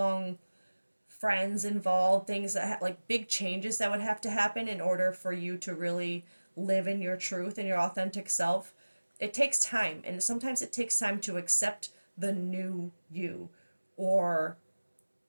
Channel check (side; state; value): both; inverted; correlation -1.00